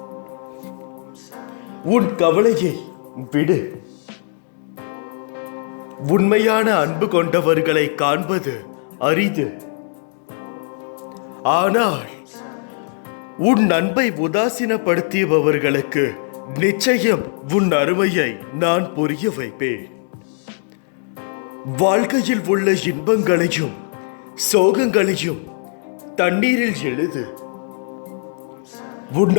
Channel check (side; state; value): right; silent; 59 dB below the other